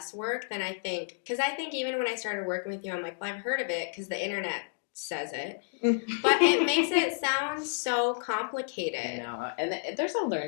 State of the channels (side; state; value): right; silent; digital silence